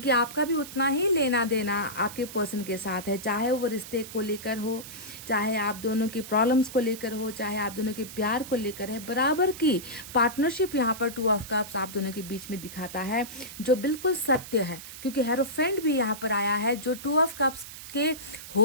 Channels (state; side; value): noise; right; hiss, 13 dB below the sound